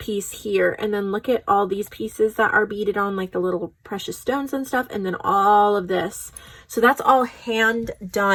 here. And then look at all these pieces that are beaded on, like the little precious stones and stuff. And then all of this. So that's all hand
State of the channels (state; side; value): identical; both; correlation 1.00